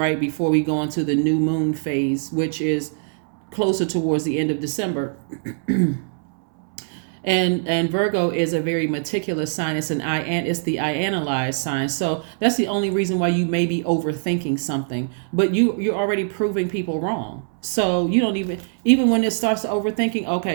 before we go into the new moon phase, which is closer towards the end of December. And Virgo is a very meticulous sign. It's the I analyze sign. So that's the only reason why you may be overthinking something. But you're already proving people wrong. So you don't even when it starts to overthinking,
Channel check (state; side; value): silent; left; 63 dB below the other